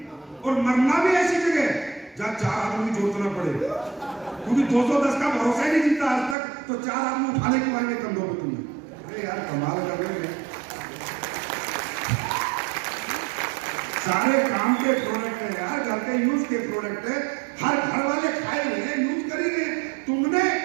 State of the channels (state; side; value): drops out; left; at 6.4 s